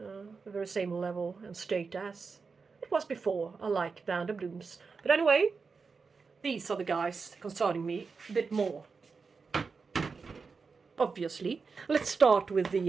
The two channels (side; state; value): left; quieter; 4.9 dB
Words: very same level and state as it was before. I like Vanda blooms. But anyway, these are the guys concerning me a bit more. Obviously. Let's start with